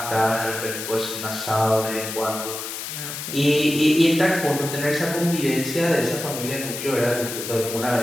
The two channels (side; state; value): left; noise; hiss, 7 dB below the sound